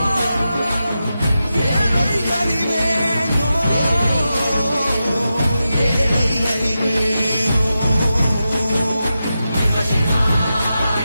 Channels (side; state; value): both; inverted; correlation -0.90